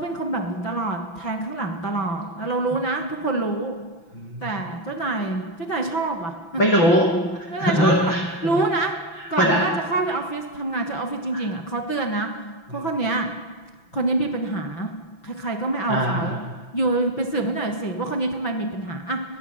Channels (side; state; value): right; late; 6.0 ms